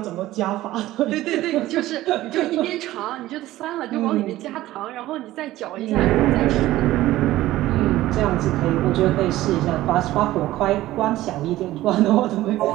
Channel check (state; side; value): quieter; left; 15.8 dB